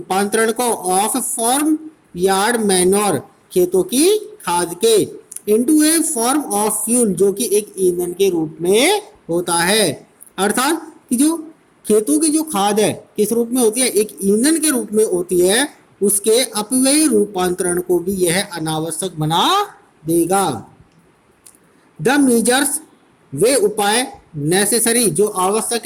को, ऑफ फॉर्म यार्ड मैन्योर खेतों की खाद के, into A form of fuel जो कि एक ईंधन के रूप में होता है। अर्थात कि जो खेतों की जो खाद है किस रूप में होती है, एक ईंधन के रूप में होती है, उसके अपव्ययी रूपांतरण को भी यह अनावश्यक बना देगा। द मेजर्स वे उपाय, नेसेसरी जो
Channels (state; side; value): identical; both; correlation 1.00